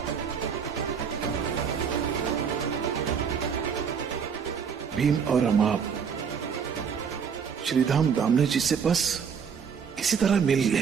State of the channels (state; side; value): quieter; left; 6.7 dB